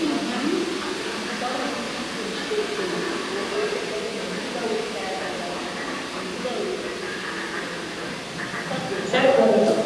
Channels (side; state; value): both; identical; correlation 1.00